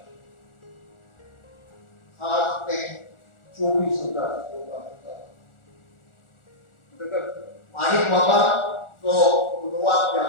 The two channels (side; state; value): right; late; 1.4 ms